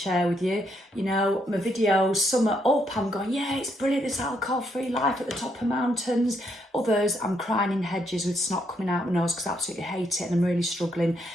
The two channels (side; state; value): both; normal; correlation 0.75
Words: with you. You know, my videos, some are up, I'm going, yeah, it's brilliant, this alcohol-free life at the top of mountains. Others, I'm crying in hedges with snot coming out my nose because I absolutely hate it and I'm really struggling.